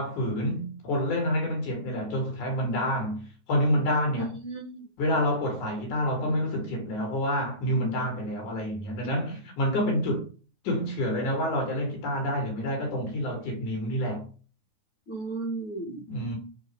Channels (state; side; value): late; right; 9.6 ms